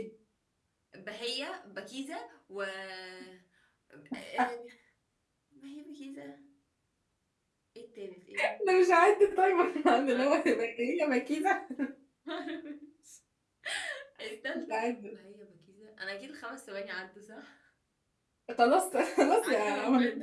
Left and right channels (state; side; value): identical; both; correlation 1.00